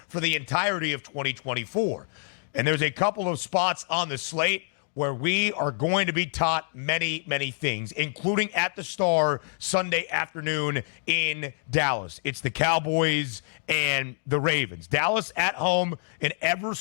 for the entirety of 2024. And there's a couple of spots on the slate where we are going to be taught many, many things, including at the Star Sunday afternoon in Dallas. It's the Cowboys and the Ravens. Dallas at home, an ever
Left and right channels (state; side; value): silent; right; digital silence